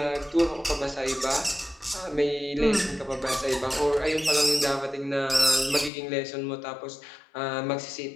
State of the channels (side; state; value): right; drops out; at 5.9 s